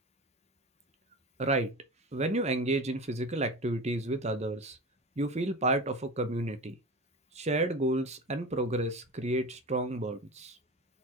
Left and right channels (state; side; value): normal; both; correlation 0.30